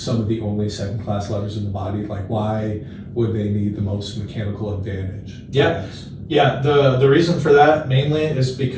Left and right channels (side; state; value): both; identical; correlation 1.00